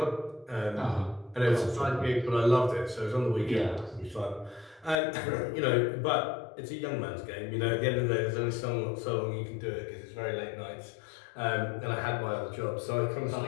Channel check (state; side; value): drops out; right; at 5.0 s